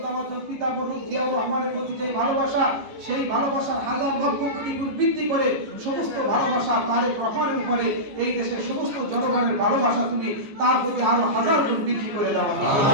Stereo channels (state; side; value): late; left; 14 ms